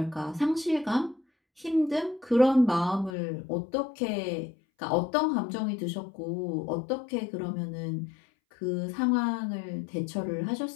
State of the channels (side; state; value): right; drops out; at 3.1 s